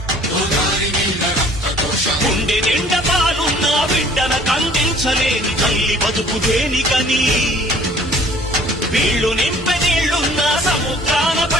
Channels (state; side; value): normal; both; correlation 0.54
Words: గోదారి నీళ్ళ రక్త ఘోష గుండె నిండ పాలున్న బిడ్డన కందించలేని తల్లి బతుకు దేనికని వీళ్ళు నింపె నీళ్లున్న సముద్రాన